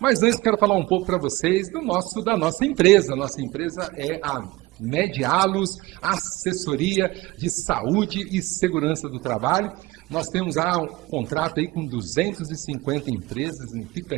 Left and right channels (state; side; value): quieter; left; 20.5 dB